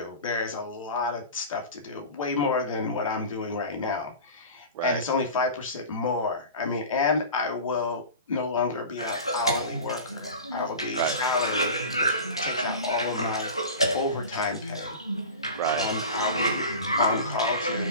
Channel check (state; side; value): inverted; both; correlation -0.34